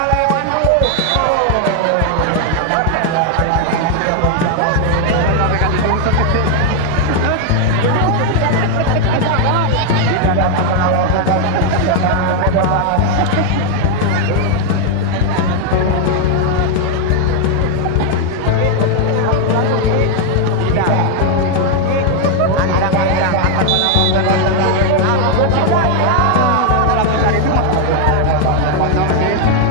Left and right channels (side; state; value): both; different; correlation 0.00